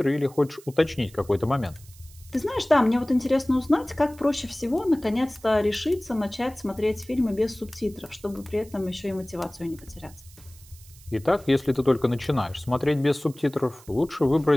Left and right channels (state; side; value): noise; right; hiss, 23 dB below the sound